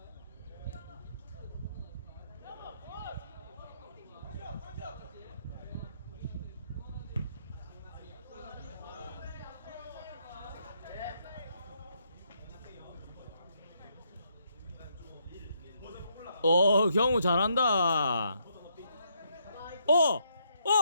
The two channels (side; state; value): both; inverted; correlation -0.75